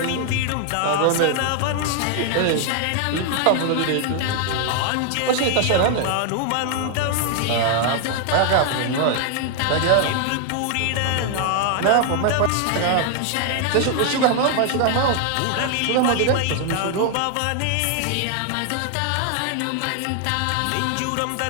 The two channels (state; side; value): different; both; correlation 0.00